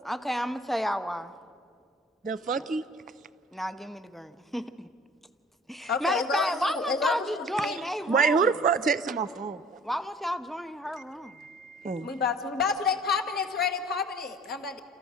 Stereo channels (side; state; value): both; normal; correlation 0.50